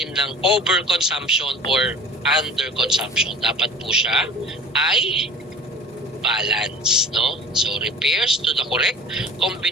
ng overconsumption or underconsumption. Dapat po siya ay balance, no? So, refers to the correct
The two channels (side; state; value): both; normal; correlation 0.42